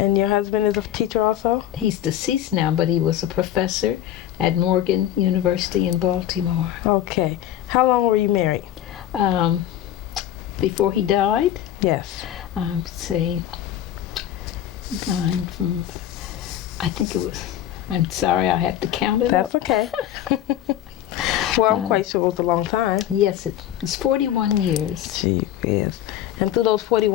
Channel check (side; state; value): right; quieter; 11.9 dB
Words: your husband is a teacher also? He's deceased now, but he was a professor at Morton University in Baltimore. Okay. How long were you married? Before he died? Yes. Say, I think it was, I'm sorry, I have to count it That's up. okay. Well, I'm quite sure it was a long time. Yes, it was 41 years. Gee whiz. And through those